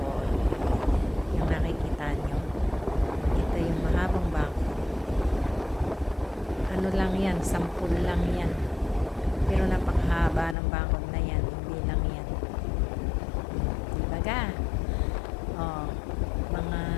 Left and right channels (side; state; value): right; drops out; at 10.6 s